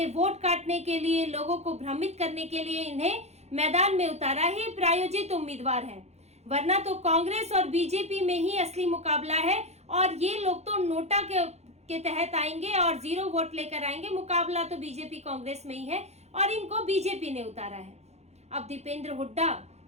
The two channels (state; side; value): late; left; 0.31 ms